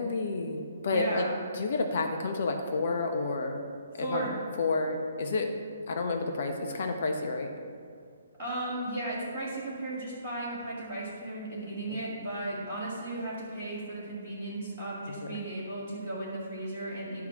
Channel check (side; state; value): both; inverted; correlation -0.67